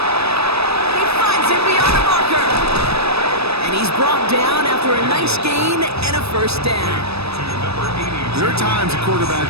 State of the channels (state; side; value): late; left; 0.78 ms